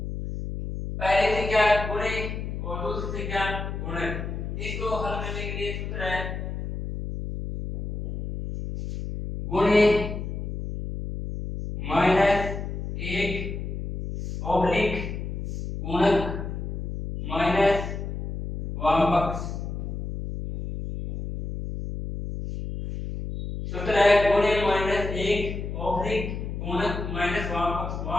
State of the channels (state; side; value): noise; left; hum, 5 dB below the sound